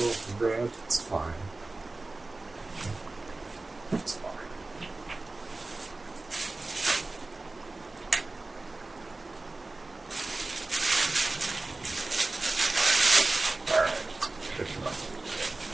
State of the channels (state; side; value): quieter; left; 3.2 dB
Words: of bread. It's fine. It's fine.